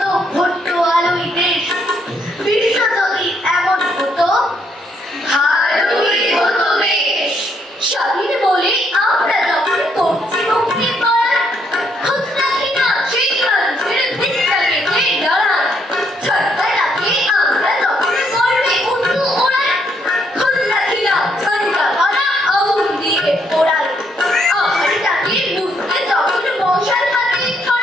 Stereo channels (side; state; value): both; normal; correlation 0.72